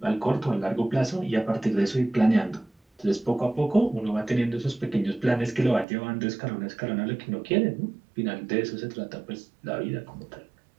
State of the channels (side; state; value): left; drops out; at 5.9 s